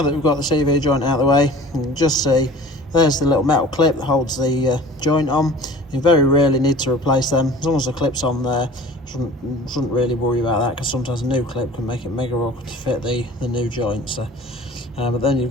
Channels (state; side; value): normal; both; correlation 0.43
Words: that we've got the CV joint out of the way, you can just see there's the little metal clip that holds the joint on. You very rarely need to replace them. As long as the clip's on there, shouldn't really worry about that, because sometimes a new clip can make it mega awkward to fit the new joint. So, but then you've